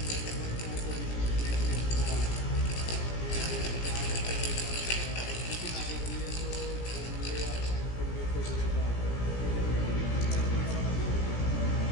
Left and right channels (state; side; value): late; right; 17 ms